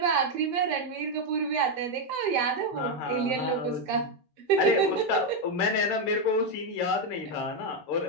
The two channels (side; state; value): both; normal; correlation 0.04